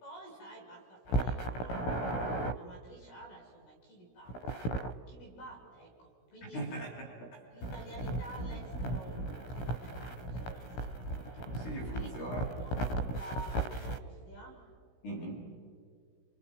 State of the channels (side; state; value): right; late; 16 ms